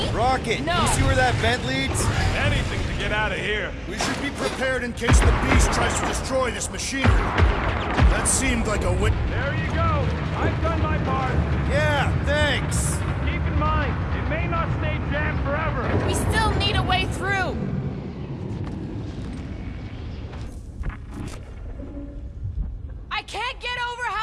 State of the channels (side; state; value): both; identical; correlation 1.00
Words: Rocket, No. you see where that vent leads? Anything to get out of here. we should be prepared in case the beast tries to destroy this machinery. That seemed like a wit. There you go. I've done my part. Yeah, thanks. Keep in mind, it may not stay jammed forever. We still need a way through. I can't get over